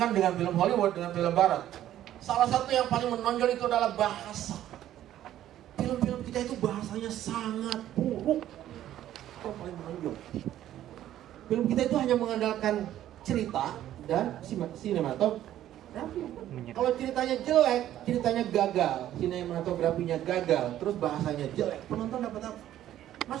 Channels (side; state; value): left; quieter; 12.4 dB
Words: dengan film Hollywood, dengan film Barat, salah satu yang paling menonjol itu adalah bahasa. Film-film kita itu bahasanya sangat buruk. Itu paling menonjol. Film kita itu hanya mengandalkan cerita dan sinematografi. Kalau ceritanya jelek, ceritanya gagal, sinematografinya gagal, terus bahasanya jelek, penonton dapat apa?